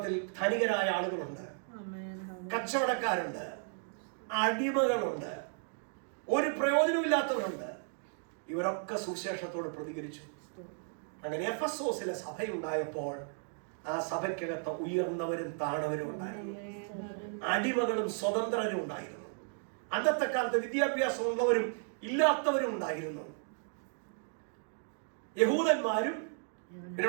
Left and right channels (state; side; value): silent; left; 55 dB below the other